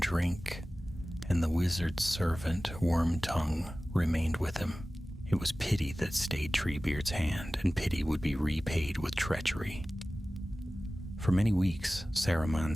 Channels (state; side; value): normal; both; correlation 0.97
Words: drink, and the wizard's servant, Wormtongue, remained with him. It was pity that stayed Treebeard's hand, and pity would be repaid with treachery. For many weeks, Saruman